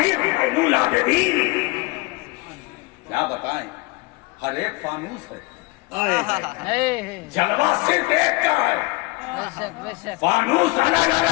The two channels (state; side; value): quieter; right; 24.0 dB